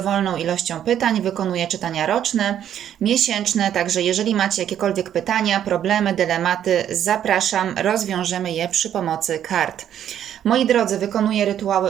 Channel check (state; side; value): quieter; left; 10.2 dB